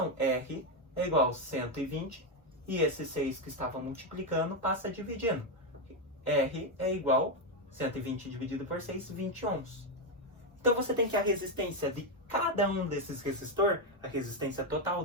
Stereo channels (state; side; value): normal; both; correlation 0.06